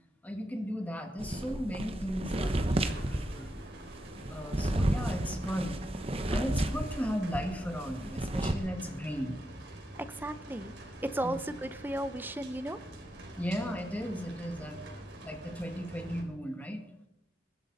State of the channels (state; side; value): normal; both; correlation 0.85